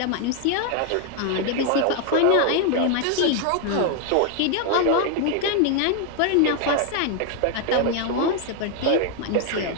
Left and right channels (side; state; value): both; different; correlation 0.00